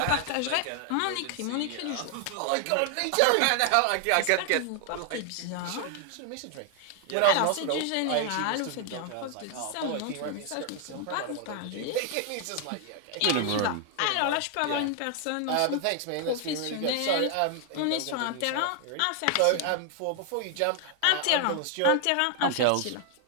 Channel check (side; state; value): both; different; correlation 0.00